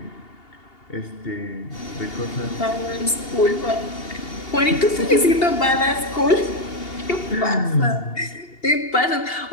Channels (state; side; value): late; right; 2.8 ms